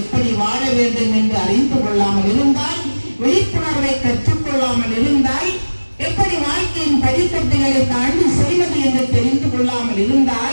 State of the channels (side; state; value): both; inverted; correlation -1.00